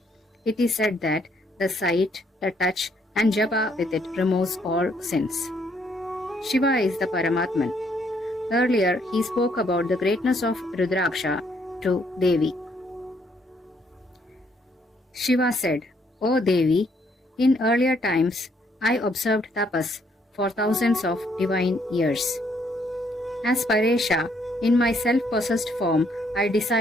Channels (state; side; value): normal; both; correlation 0.69